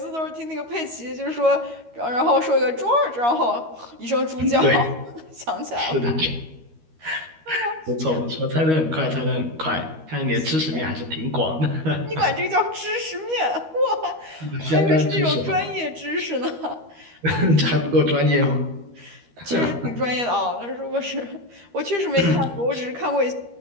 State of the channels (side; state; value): left; late; 13 ms